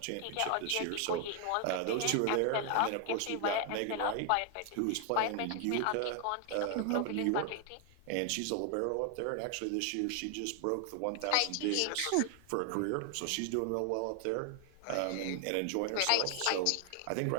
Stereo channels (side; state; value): both; different; correlation 0.00